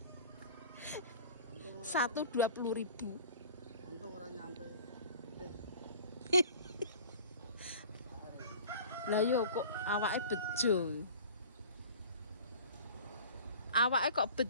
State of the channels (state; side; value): inverted; both; correlation -0.43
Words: 120.000. Untung ora nyampe. Lah yo kok awake bejo. Awake kok